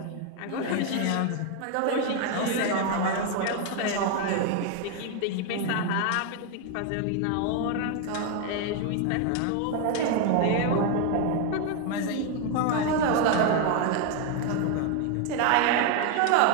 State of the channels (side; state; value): both; different; correlation 0.01